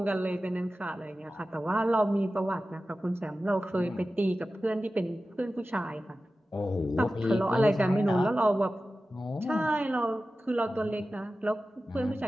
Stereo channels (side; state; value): both; normal; correlation 0.95